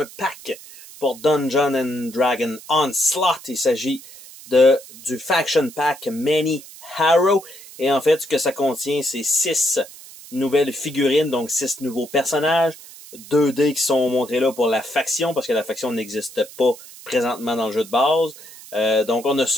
pack pour Dungeons and Dragons Onslaught. Il s'agit du Faction Pack Many Harrow. Et en fait, ce que ça contient, c'est 6 nouvelles figurines, donc 6 nouveaux personnages. 2 dés qui sont montrés là pour la faction, parce que la faction n'existe pas présentement dans le jeu de base. Donc on a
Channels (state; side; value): noise; right; hiss, 18 dB below the sound